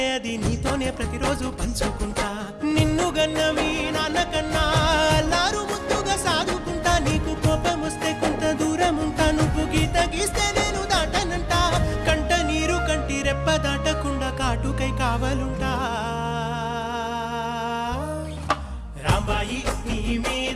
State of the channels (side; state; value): both; identical; correlation 1.00